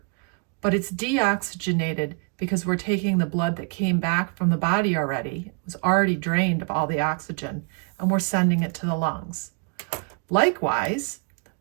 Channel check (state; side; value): quieter; left; 38.2 dB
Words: but it's deoxygenated because we're taking the blood that came back from the body already. It was already drained of all the oxygen, and we're sending it to the lungs. Likewise,